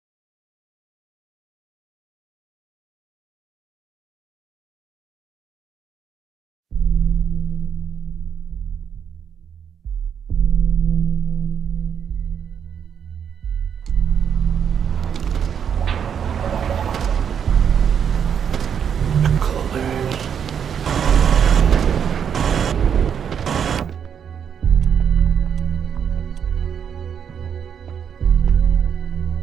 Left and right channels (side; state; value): left; quieter; 7.9 dB